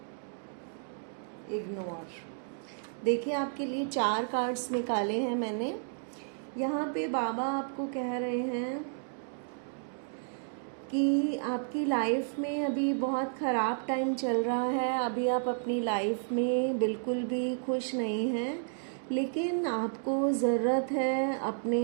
ignore. देखिए, आपके लिए 4 कार्ड्स निकाले हैं मैंने। यहाँ पे बाबा आपको कह रहे हैं कि आपकी लाइफ में अभी बहुत ख़राब टाइम चल रहा है। अभी आप अपनी लाइफ में बिल्कुल भी खुश नहीं हैं, लेकिन आपको ज़रूरत है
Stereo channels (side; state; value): left; silent; digital silence